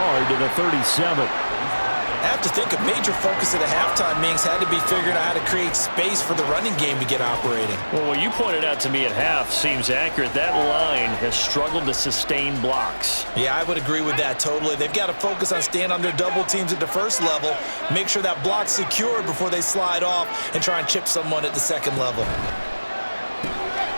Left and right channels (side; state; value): both; inverted; correlation -1.00